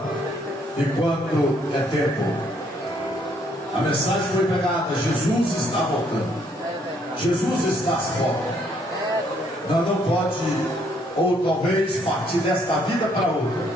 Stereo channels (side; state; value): both; normal; correlation 0.68